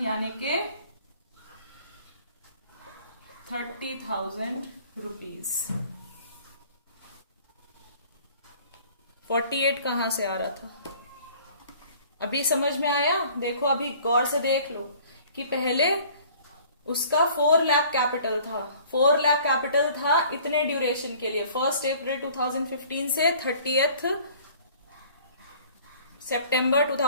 यानी के 30,000 रुपीज। 48 कहां से आ रहा था? अभी समझ में आया? देखो अभी गौर से देख लो कि पहले उसका 4 लाख कैपिटल था। 4 लाख कैपिटल था इतने ड्यूरेशन के लिए, 1 अप्रैल 2015 से 30 सितंबर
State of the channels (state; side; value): inverted; both; correlation -0.52